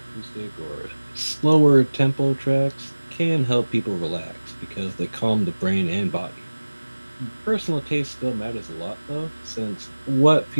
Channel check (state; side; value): inverted; both; correlation -1.00